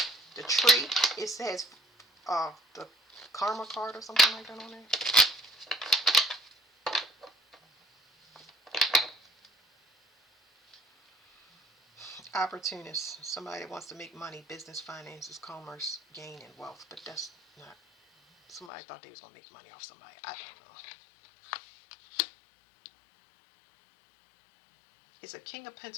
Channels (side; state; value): right; drops out; at 18.7 s